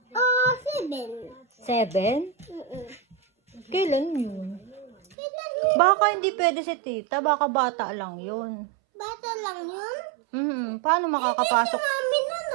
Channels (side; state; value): left; drops out; at 5.2 s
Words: 7. 7? Kailan yun? Kailan yun? Baka hindi pwede si tita. Baka bata lang yun. Bata lang yun? Paano makakapasok? Mami na